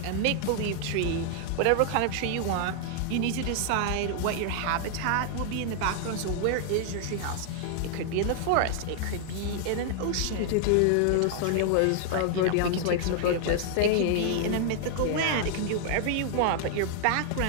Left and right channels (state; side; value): different; both; correlation 0.00